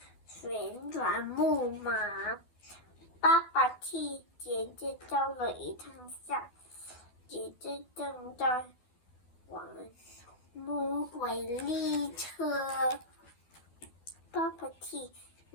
旋转木马。爸爸替姐姐照了一张相，姐姐正在玩魔鬼列车。爸爸替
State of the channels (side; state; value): right; late; 12 ms